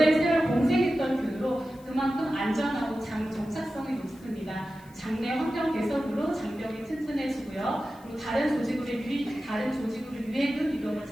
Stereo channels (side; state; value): left; noise; hiss, 27 dB below the sound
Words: 세월 공생했던 균으로 그만큼 안전하고 장 정착성이 높습니다. 장내 환경 개선으로 장벽이 튼튼해지고요. 그리고 다른 조직으로 유해균 이동을